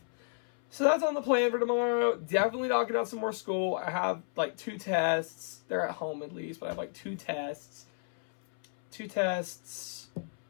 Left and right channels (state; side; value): silent; right; 57 dB below the other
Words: So that's on the plan for tomorrow. Definitely knocking out some more school. I have like 2 tests. They're at home at least, but I have like 2 tests. 2 tests.